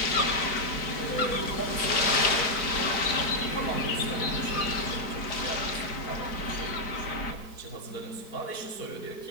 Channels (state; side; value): late; right; 4.6 ms